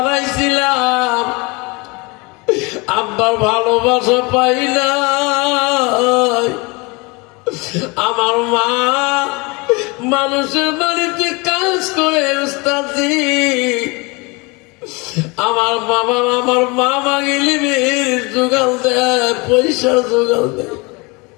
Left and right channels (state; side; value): quieter; right; 27.2 dB